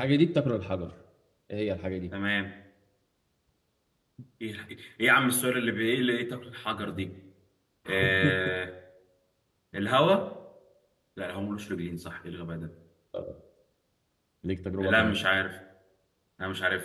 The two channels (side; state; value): both; identical; correlation 1.00